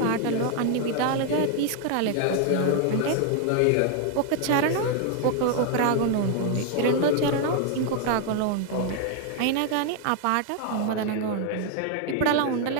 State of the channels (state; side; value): different; both; correlation 0.00